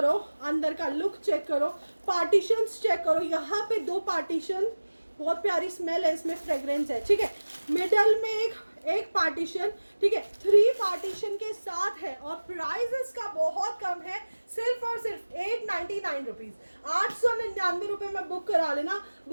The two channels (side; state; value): both; inverted; correlation -1.00